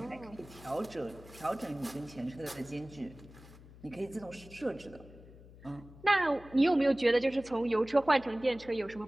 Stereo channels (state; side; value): noise; left; hum, 20 dB below the sound